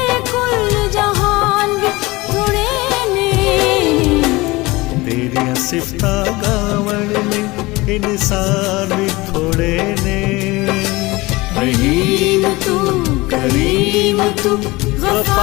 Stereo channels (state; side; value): quieter; right; 21.7 dB